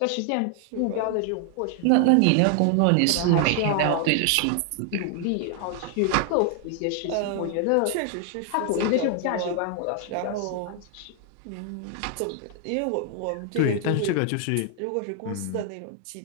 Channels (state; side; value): different; both; correlation 0.00